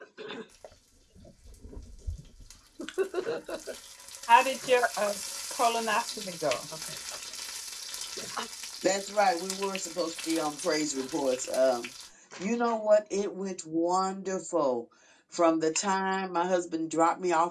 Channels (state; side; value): identical; both; correlation 1.00